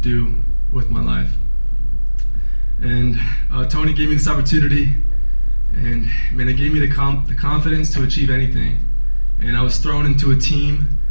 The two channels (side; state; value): both; inverted; correlation -1.00